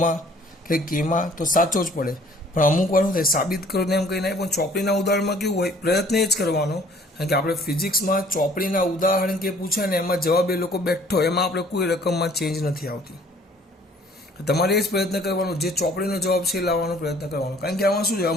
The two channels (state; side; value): normal; both; correlation 0.56